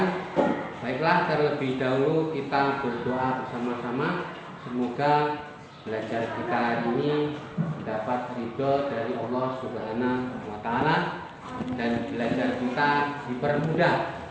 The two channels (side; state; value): both; identical; correlation 1.00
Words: baiklah terlebih dahulu kita berdoa bersama-sama. Semoga belajar kita hari ini dapat ridho dari Allah Subhanahu wa Ta'ala dan belajar kita dipermudah.